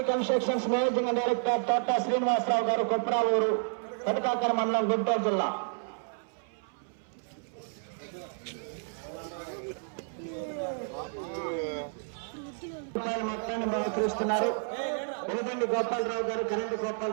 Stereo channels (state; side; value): silent; left; 57 dB below the other